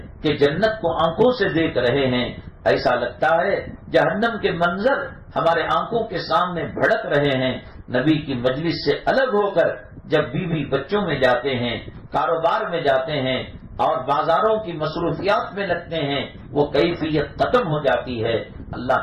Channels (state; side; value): identical; both; correlation 1.00